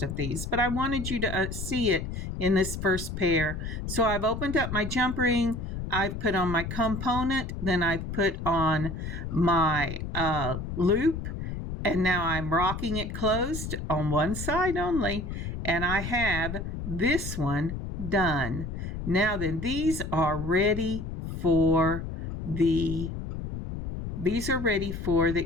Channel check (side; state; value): left; noise; rumble, 5 dB below the sound